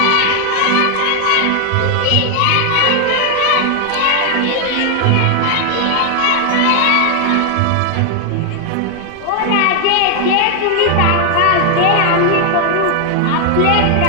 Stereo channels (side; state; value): both; different; correlation 0.00